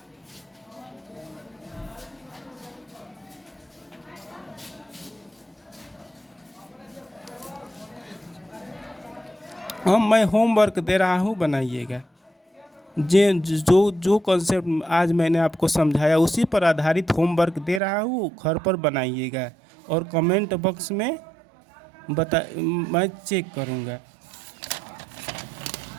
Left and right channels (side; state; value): left; drops out; at 17.8 s